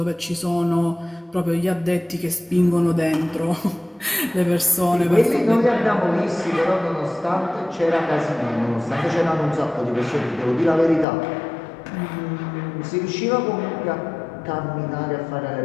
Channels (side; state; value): right; drops out; at 11.1 s